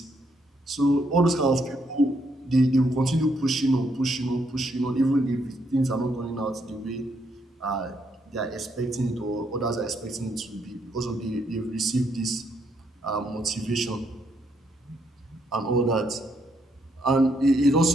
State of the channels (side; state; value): both; normal; correlation 0.75